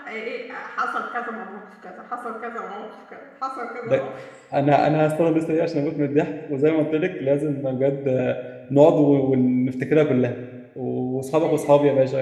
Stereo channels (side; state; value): both; identical; correlation 1.00